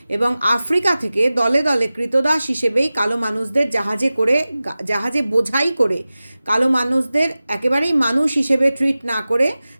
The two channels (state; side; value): inverted; both; correlation -0.96